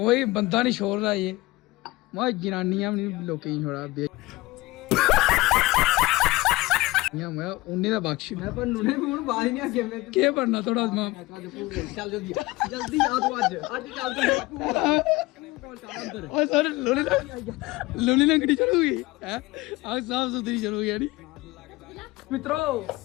बंदा नहीं छोड़ रहा, ये वह जनानियां लोग छोड़ा मैं उन्हें दा बख्श मैं पर नुने भी हुन बाहर नहीं आ गया मैं के पढ़ना थोड़ा मां चल जल्दी जल्दी आ तू आज चलते हैं पूरा और सर लोनी लंगड़ी चलूगी है आज साफ सुथरी चलूगी यानी। मित्रों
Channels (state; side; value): quieter; right; 20.6 dB